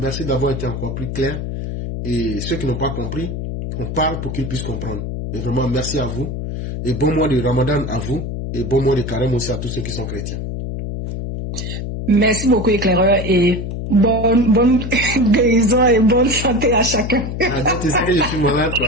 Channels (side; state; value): left; noise; hum, 5 dB below the sound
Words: d'avoir été encore plus clair. Et ceux qui n'ont pas compris, on parle pour qu'ils puissent comprendre. Et vraiment, merci à vous. Et bon mois de Ramadan à vous. Et bon mois de Carême aussi à tous ceux qui sont chrétiens. Merci beaucoup, éclaireur, et bonne guérison et bonne santé à chacun. Ah, donc tu sais que je suis malade,